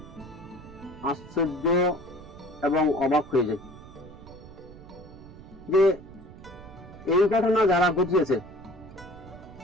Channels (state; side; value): noise; right; rumble, 17 dB below the sound